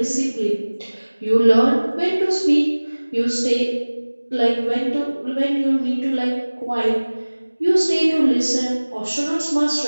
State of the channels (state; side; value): inverted; both; correlation -1.00